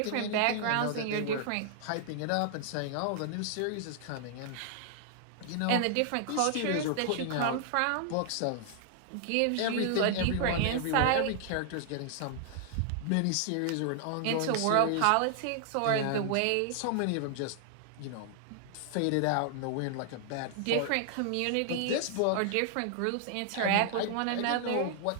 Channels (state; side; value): different; both; correlation 0.00